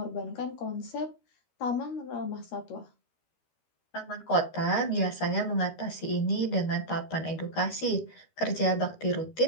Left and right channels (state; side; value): late; right; 13 ms